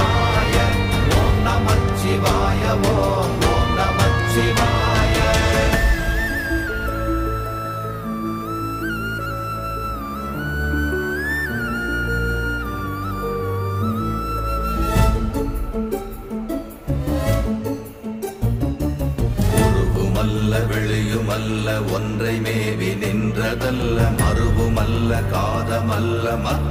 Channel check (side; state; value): both; identical; correlation 1.00